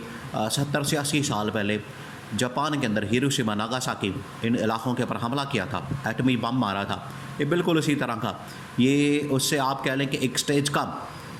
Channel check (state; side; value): identical; both; correlation 1.00